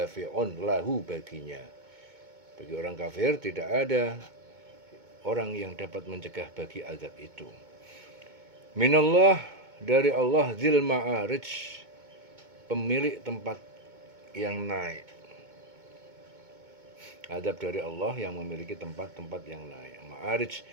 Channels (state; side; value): late; left; 2.2 ms